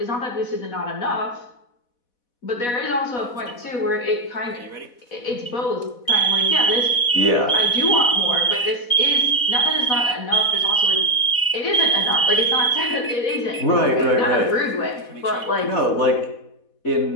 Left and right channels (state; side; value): late; right; 4.1 ms